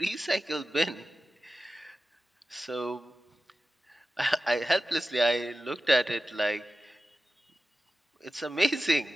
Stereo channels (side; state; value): both; normal; correlation 0.94